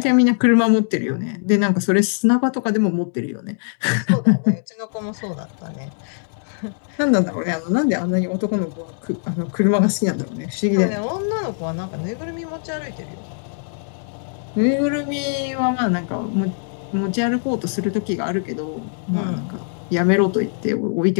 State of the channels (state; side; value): silent; right; digital silence